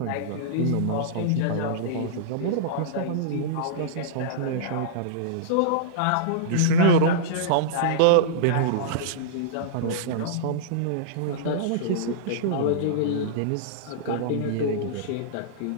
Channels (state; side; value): different; both; correlation -0.03